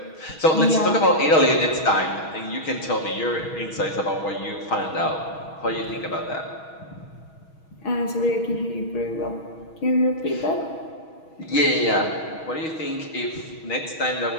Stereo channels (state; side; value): late; right; 6.3 ms